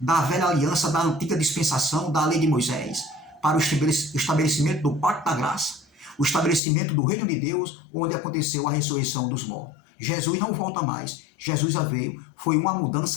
da velha aliança, da antiga dispensação, da lei de Moisés, para o estabelecimento do pacto da graça, o estabelecimento do reino de Deus, onde aconteceu a ressurreição dos mortos. Jesus não volta mais. Jesus já veio. Foi uma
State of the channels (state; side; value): drops out; right; at 6.6 s